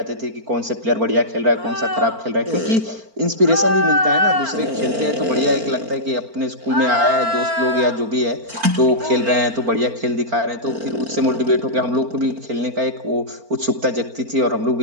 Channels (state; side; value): late; left; 4.4 ms